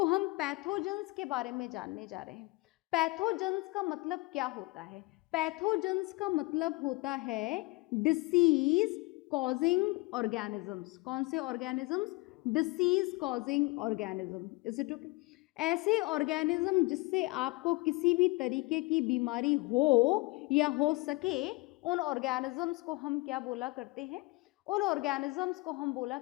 हम पैथोजेंस के बारे में जानने जा रहे हैं। पैथोजेंस का मतलब क्या होता है? पैथोजेंस का मतलब होता है डिसीज कॉजिंग ऑर्गेनिजम्स। कौन से organisms? Disease causing organism. Is it okay? ऐसे ऑर्गेनिज्म जिससे आपको किसी भी तरीके की बीमारी हो या हो सके, उन ऑर्गेनिजम्स को हम क्या बोला करते हैं? उन ऑर्गेनिजम्स को हम बोला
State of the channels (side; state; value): right; quieter; 24.0 dB